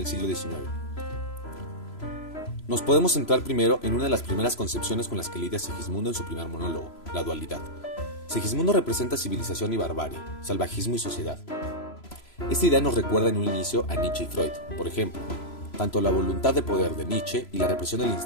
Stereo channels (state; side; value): late; right; 3.0 ms